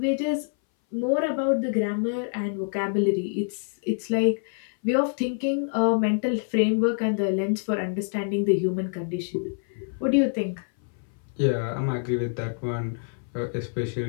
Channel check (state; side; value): silent; right; 59 dB below the other